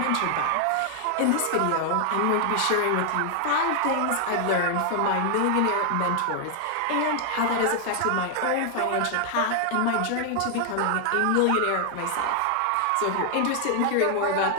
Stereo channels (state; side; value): different; both; correlation 0.00